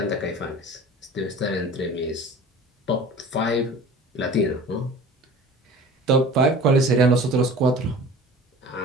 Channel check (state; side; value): normal; both; correlation 0.41